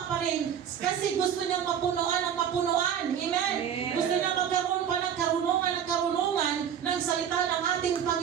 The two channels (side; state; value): left; quieter; 8.7 dB